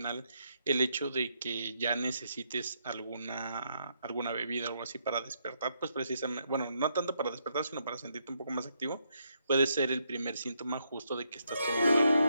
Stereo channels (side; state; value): both; inverted; correlation -0.77